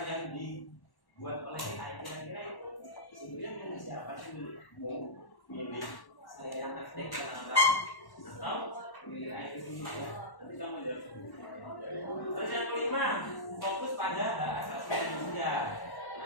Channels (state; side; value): late; right; 1.1 ms